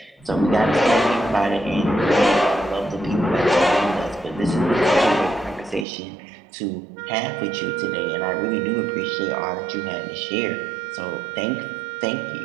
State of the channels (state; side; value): drops out; left; at 5.9 s